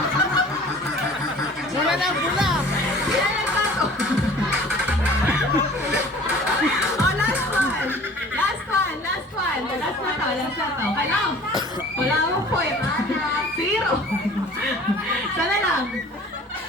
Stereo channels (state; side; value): normal; both; correlation 0.47